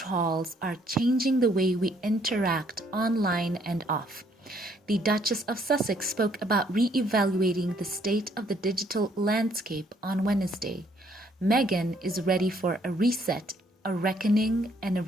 are changing the way we interact online and off. The Duchess of Sussex spoke about re-evaluating the state of the digital landscape on Wednesday. Meghan is ready for a reset, a reckoning, and a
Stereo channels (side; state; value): both; normal; correlation 0.66